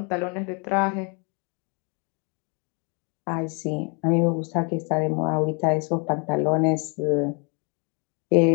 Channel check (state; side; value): quieter; right; 34.7 dB